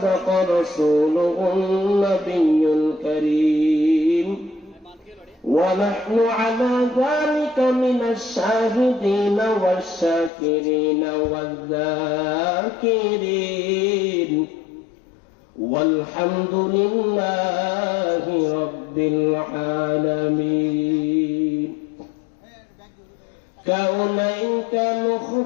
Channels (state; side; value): drops out; right; at 10.3 s